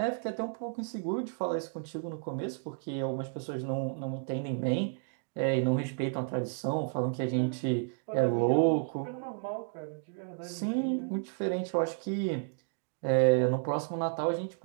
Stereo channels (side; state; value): left; silent; digital silence